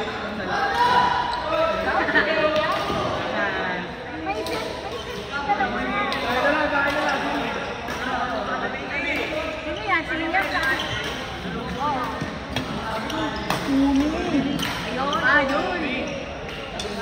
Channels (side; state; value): both; identical; correlation 1.00